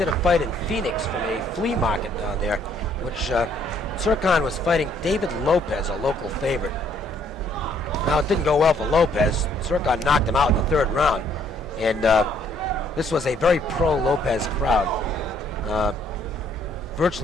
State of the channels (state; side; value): normal; both; correlation 0.65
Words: a fight in Phoenix from a flea market down there, which Tsurkan was fighting David Lopez, a local favorite. Now, it didn't go well for Lopez. Tsurkan knocked him out in the 3rd round, and this was a very pro-Lopez crowd.